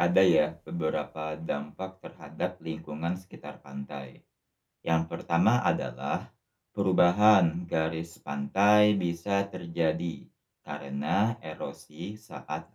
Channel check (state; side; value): identical; both; correlation 1.00